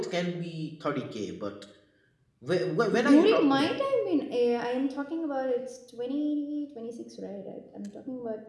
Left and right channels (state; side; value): identical; both; correlation 1.00